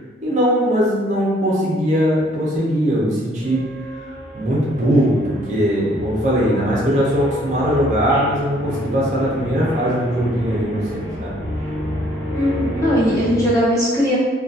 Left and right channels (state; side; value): normal; both; correlation 0.62